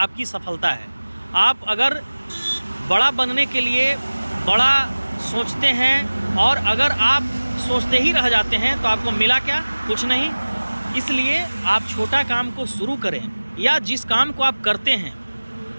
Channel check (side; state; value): both; inverted; correlation -1.00